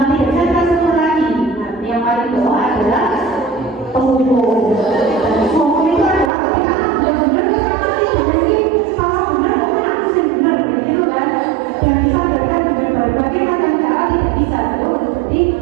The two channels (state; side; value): drops out; left; at 6.3 s